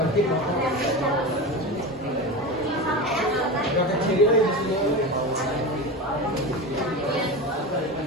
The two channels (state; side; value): normal; both; correlation 0.24